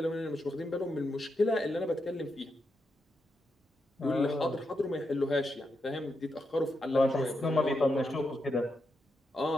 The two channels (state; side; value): normal; both; correlation 0.84